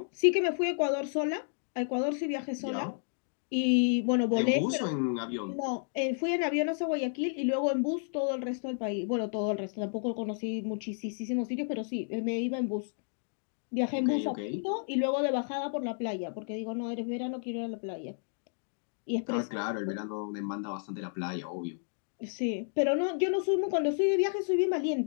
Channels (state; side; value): silent; right; digital silence